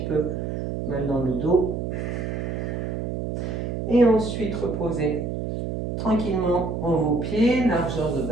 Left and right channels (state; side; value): noise; right; hum, 3 dB below the sound